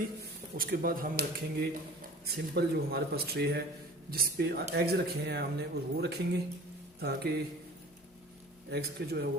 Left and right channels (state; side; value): noise; left; hum, 30 dB below the sound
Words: उसके बाद हम रखेंगे सिंपल जो हमारे पास ट्रे है जिस पे एग्स रखे हैं हमने, और वो रखेंगे ताकि एग्स के जो है वो